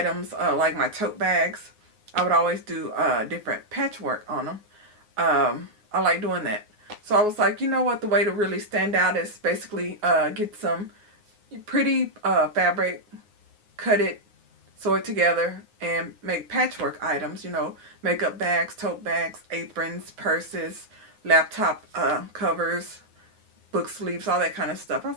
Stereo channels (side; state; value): left; late; 9.5 ms